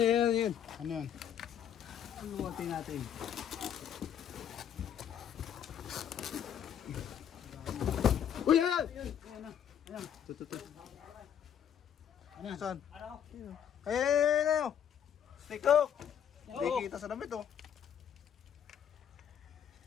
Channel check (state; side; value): quieter; right; 9.0 dB